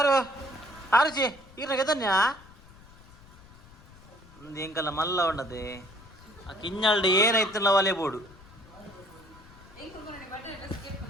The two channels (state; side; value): noise; left; rumble, 22 dB below the sound